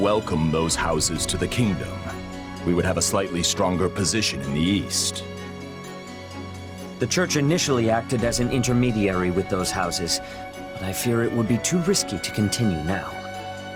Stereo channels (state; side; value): identical; both; correlation 1.00